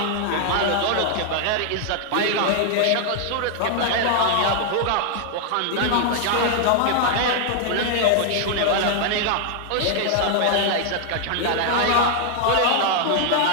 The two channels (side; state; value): both; different; correlation 0.00